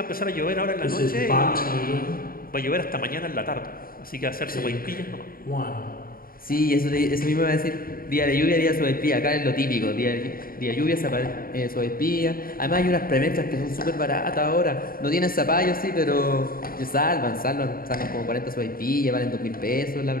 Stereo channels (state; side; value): late; right; 0.42 ms